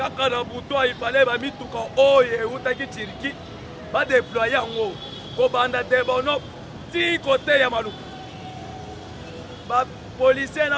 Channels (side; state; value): both; identical; correlation 1.00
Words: il fallait mettre tout le et Outaki Tiriki. Va déployer en haut. Kobanda Debono, 10 côtés Yamalou. Les policiers